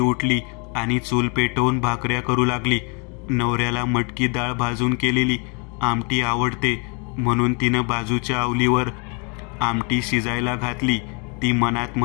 आणि चूल पेटवून भाकऱ्या करू लागली. नवऱ्याला मटकी डाळ भाजून केलेली आमटी आवडते म्हणून तिनं बाजूच्या अवलीवर आमटी शिजायला घातली. ती मनात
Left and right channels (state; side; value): quieter; right; 34.7 dB